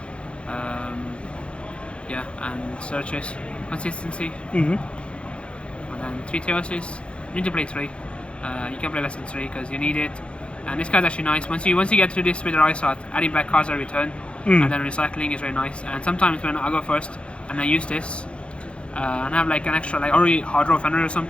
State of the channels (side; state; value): right; late; 0.059 ms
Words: Yeah, and searches consistency. And then 3 Theosis. You need to play 3. You can play less than 3 because you need it. And this card's actually nice. Once you get through this with the Rice Art, adding back cards at return, and then recycling is very nice. And sometimes when I go first and I use this, and I have like an extra, like already hard draw Fenrir or